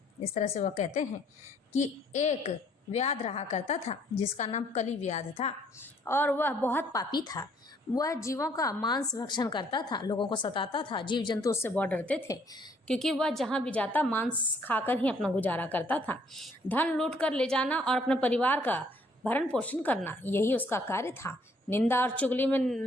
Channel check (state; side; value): normal; both; correlation 0.64